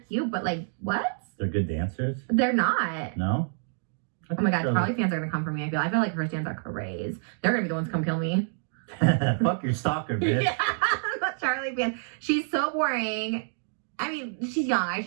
but, like, what? They're good dancers? They're not. No? Oh my god, Charli fans are gonna come for me. I feel like her fans are crazy. They're gonna be the ones to come kill me. Fuck your stalker, bitch. Yeah, I'm a Charli fan. She's so boring. I mean, she's young. I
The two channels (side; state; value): left; silent; digital silence